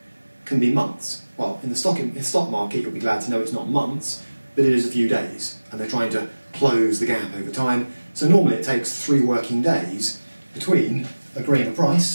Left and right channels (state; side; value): inverted; both; correlation -1.00